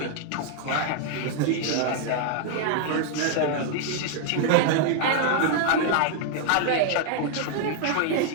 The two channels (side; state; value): both; different; correlation 0.00